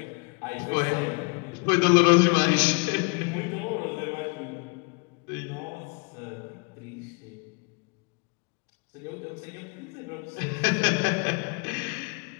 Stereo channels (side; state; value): right; quieter; 31.6 dB